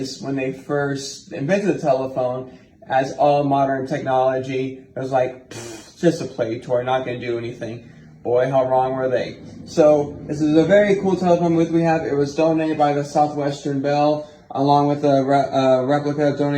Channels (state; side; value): identical; both; correlation 1.00